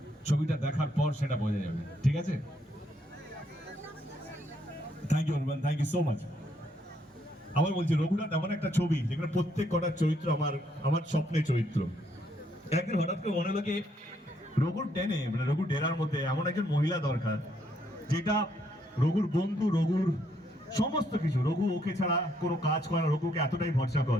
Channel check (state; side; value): normal; both; correlation 0.72